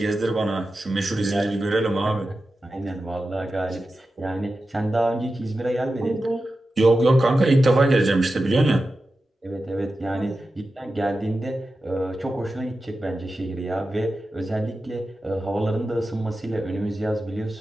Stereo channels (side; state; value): both; normal; correlation 0.92